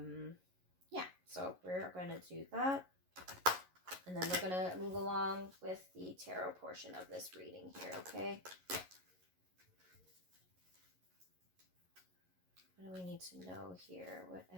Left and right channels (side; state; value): left; late; 11 ms